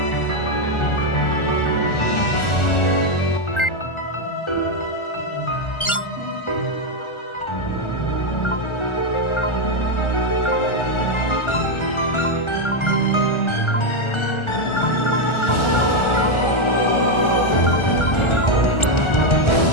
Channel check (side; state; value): right; late; 1.4 ms